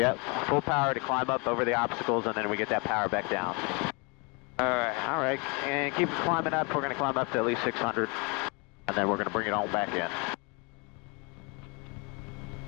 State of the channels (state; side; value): quieter; right; 30.8 dB